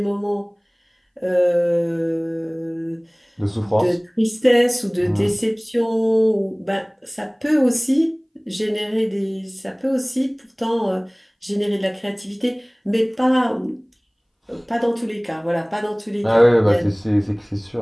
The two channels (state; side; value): identical; both; correlation 1.00